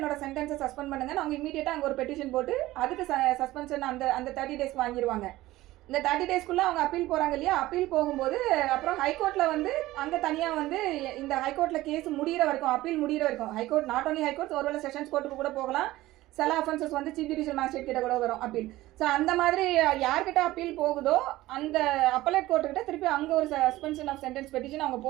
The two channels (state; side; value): quieter; left; 17.1 dB